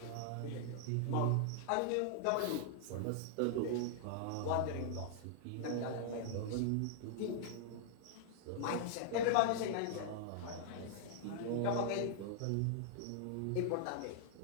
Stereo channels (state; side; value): different; both; correlation -0.01